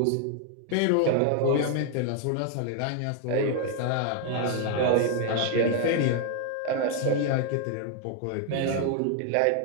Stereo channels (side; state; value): both; different; correlation 0.00